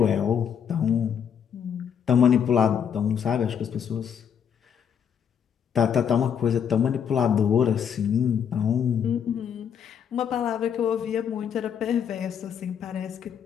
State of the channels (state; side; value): quieter; right; 8.0 dB